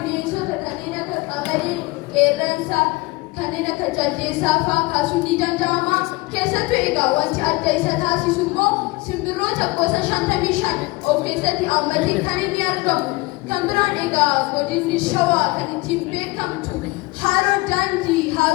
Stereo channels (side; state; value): right; quieter; 23.2 dB